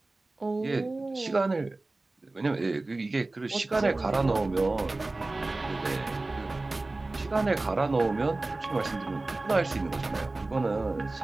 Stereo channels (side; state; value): left; quieter; 3.1 dB